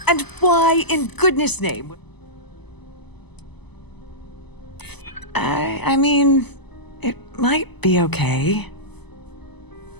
And why in goodness name? I mean, it might be okay.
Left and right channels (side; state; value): right; late; 0.99 ms